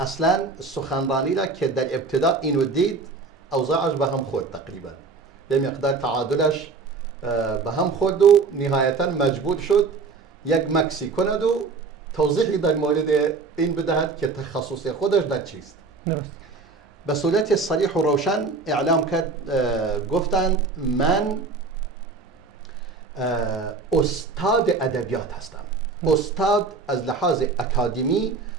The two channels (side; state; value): left; quieter; 4.3 dB